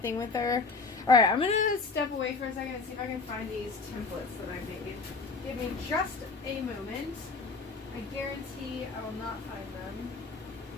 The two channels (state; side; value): quieter; right; 4.2 dB